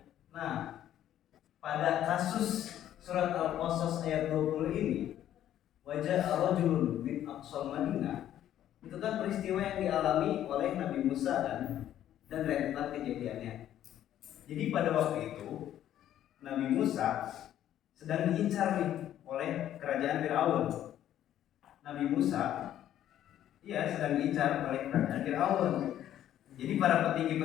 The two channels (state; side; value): quieter; right; 11.6 dB